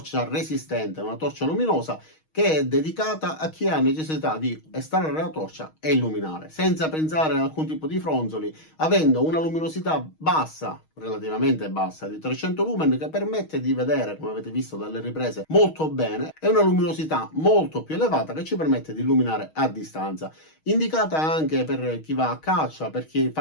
resistente, una torcia luminosa che è dedicata a chi ha necessità di estrarre la torcia e illuminare, senza pensare ad alcun tipo di fronzoli, avendo una luminosità bassa, relativamente bassa, di 300 lumen, che permette di vedere, come avete visto dalle riprese, molto bene, e una luminosità molto più elevata che ci permette di illuminare a distanza. Indicata anche per chi va a caccia, per chi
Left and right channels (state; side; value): late; right; 6.4 ms